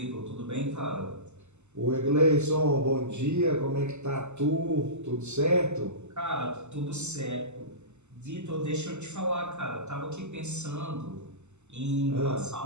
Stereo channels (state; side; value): late; left; 0.83 ms